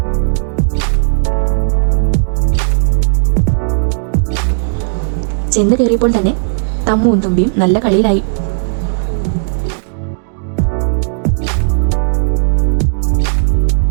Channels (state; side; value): silent; left; 63 dB below the other